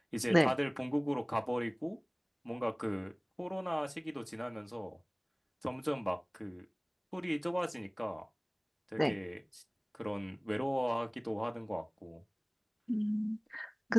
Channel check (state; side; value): identical; both; correlation 1.00